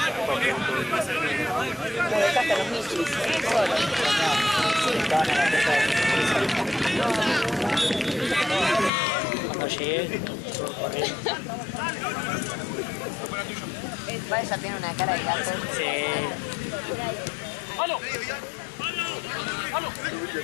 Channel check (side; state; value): right; drops out; at 8.9 s